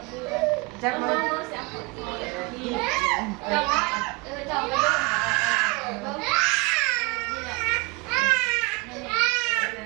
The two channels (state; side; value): quieter; left; 26.5 dB